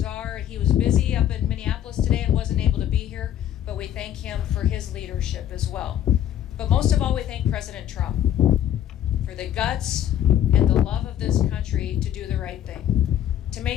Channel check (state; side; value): quieter; right; 10.9 dB